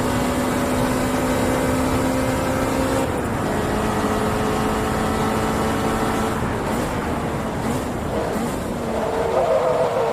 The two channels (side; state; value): both; identical; correlation 1.00